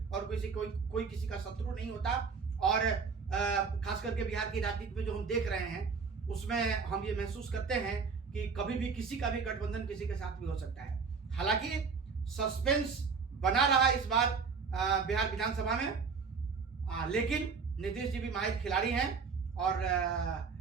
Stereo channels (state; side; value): quieter; left; 5.3 dB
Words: और कोई किसी का शत्रु नहीं होता, और खास करके बिहार की राजनीति में जो हम देख रहे हैं उसमें हम ये महसूस करते हैं कि कभी भी किसी का भी गठबंधन किसी के साथ भी हो सकता है। हालांकि सस्पेंस बना रहा इस बार बिहार विधानसभा में, लेकिन नीतीश जी भी माहिर खिलाड़ी हैं और